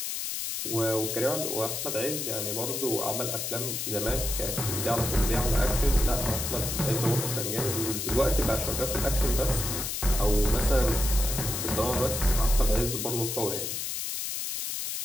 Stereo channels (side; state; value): left; noise; hiss, 3 dB below the sound